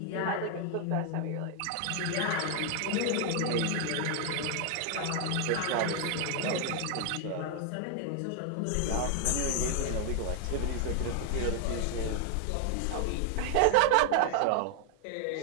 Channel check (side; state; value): both; different; correlation 0.00